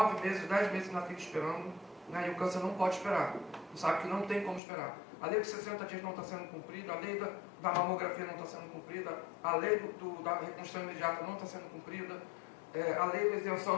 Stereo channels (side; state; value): right; drops out; at 4.6 s